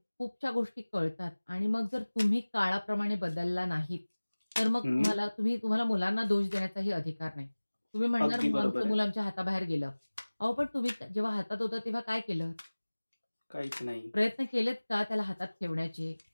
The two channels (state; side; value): inverted; both; correlation -1.00